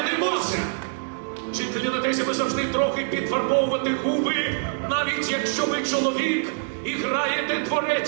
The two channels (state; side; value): silent; left; 61 dB below the other